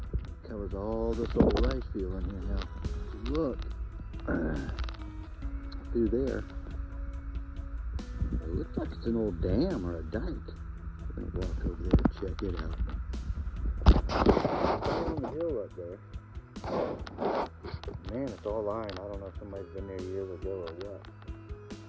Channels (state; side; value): identical; both; correlation 1.00